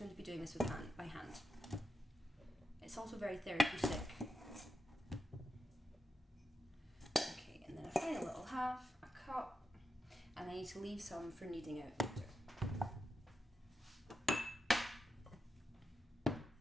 to be doing this by hand. It's also very therapeutic. Okay, and then a final little half, a cup, and I need to leave some for kneading out later.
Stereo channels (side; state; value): both; normal; correlation 0.87